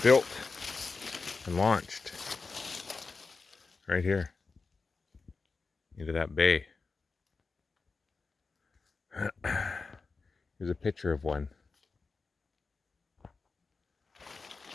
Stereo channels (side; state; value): right; quieter; 4.3 dB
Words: built and launched right here into that bay. Here's a picture of one.